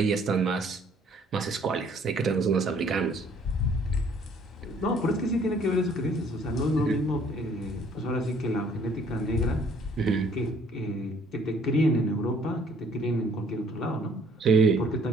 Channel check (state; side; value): normal; both; correlation 0.60